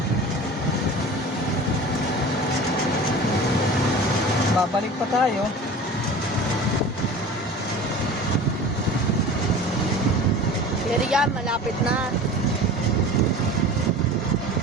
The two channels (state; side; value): normal; both; correlation 0.38